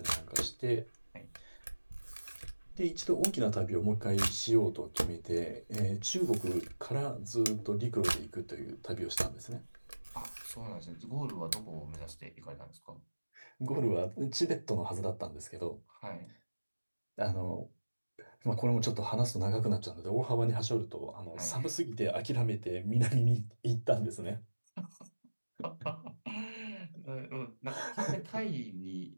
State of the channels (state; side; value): inverted; both; correlation -1.00